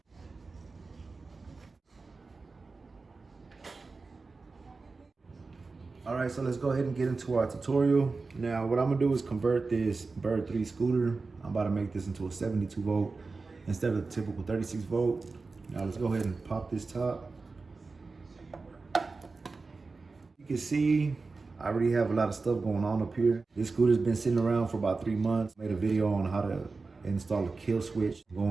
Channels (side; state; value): left; quieter; 4.0 dB